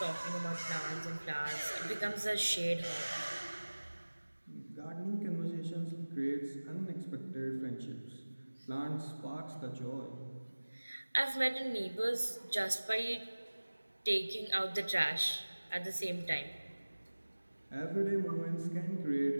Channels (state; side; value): inverted; both; correlation -1.00